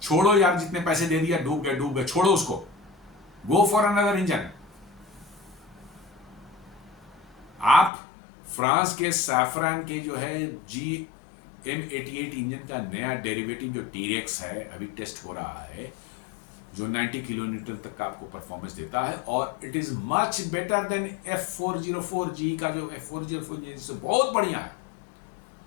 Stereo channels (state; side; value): drops out; right; at 7.9 s